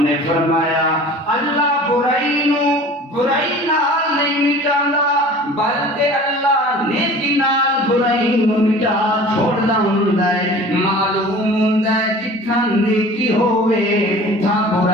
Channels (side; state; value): both; normal; correlation 0.43